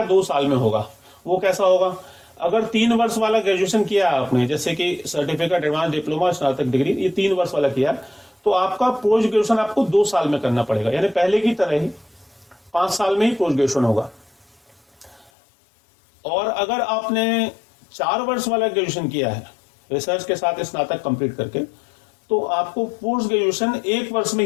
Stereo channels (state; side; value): drops out; right; at 15.3 s